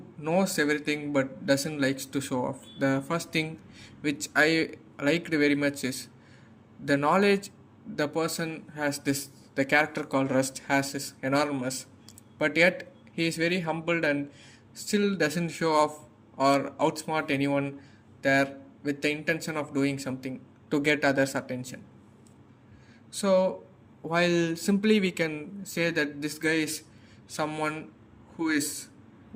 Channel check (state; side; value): identical; both; correlation 1.00